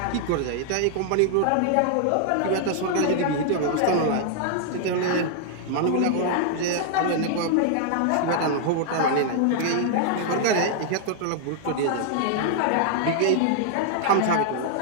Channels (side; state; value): both; different; correlation -0.01